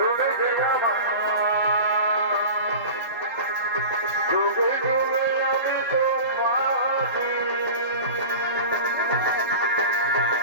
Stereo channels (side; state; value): both; inverted; correlation -0.33